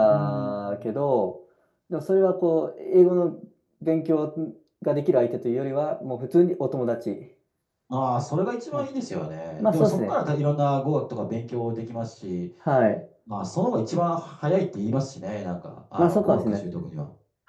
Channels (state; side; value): identical; both; correlation 1.00